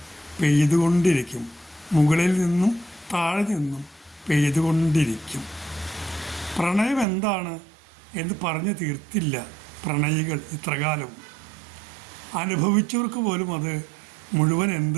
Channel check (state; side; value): drops out; left; at 7.1 s